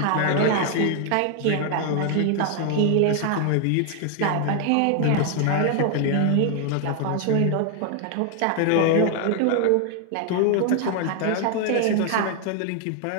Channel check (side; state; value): both; different; correlation 0.00